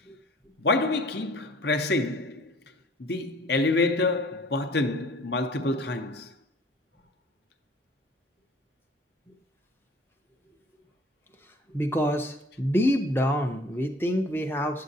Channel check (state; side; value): normal; both; correlation 0.51